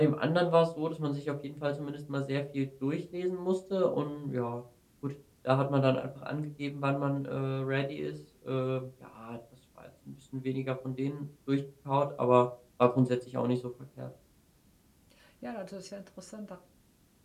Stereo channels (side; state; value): both; identical; correlation 1.00